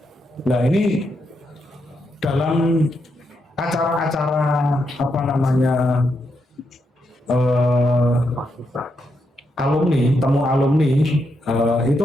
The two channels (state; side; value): normal; both; correlation 0.81